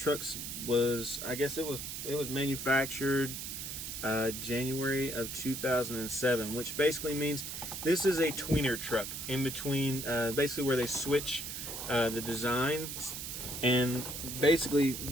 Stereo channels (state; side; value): noise; right; hiss, 6 dB below the sound